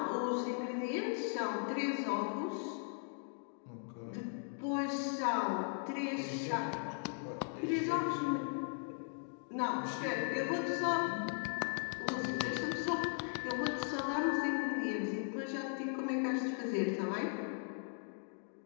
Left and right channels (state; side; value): silent; right; 52 dB below the other